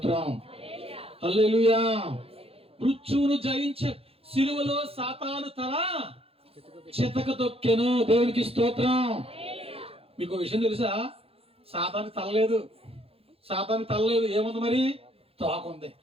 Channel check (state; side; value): late; left; 0.28 ms